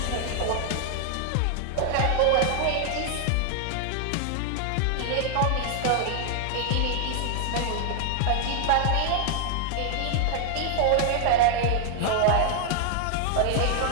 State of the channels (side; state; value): both; different; correlation 0.00